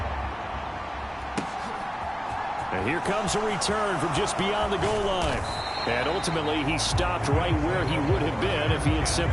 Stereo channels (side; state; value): both; identical; correlation 1.00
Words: And here comes a return from just beyond the goal line. And ultimately, he stopped right where he would have been if he had